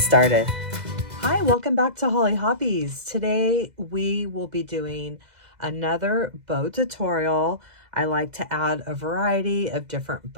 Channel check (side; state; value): left; late; 2.0 ms